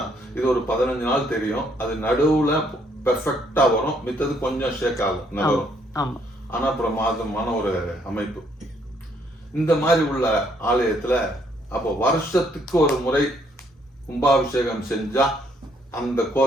இது ஒரு 15 நாள் தெரியும். அது நடுவுல பெர்ஃபெக்டா வரும். மித்தது கொஞ்சம் ஷேக் ஆகும், நகரும். ஆனா பிரமாதமான ஒரு அமைப்பு. இந்த மாதிரி உள்ள ஆலயத்துல அப்போ வருஷத்துக்கு ஒரு முறை கும்பாபிஷேகம் செஞ்சா அந்த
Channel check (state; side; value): normal; both; correlation 0.69